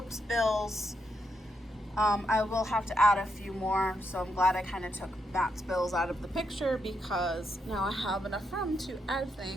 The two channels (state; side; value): normal; both; correlation 0.80